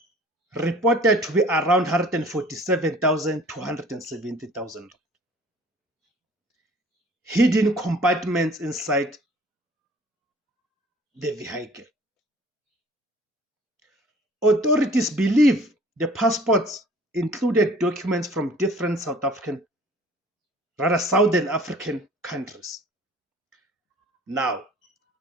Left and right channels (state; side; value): normal; both; correlation 0.51